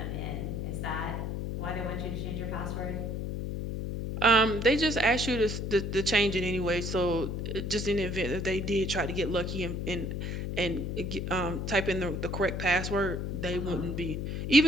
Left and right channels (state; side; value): noise; left; hum, 3 dB below the sound